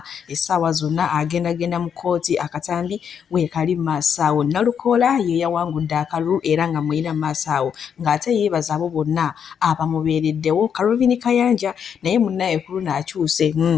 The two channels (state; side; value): quieter; right; 7.7 dB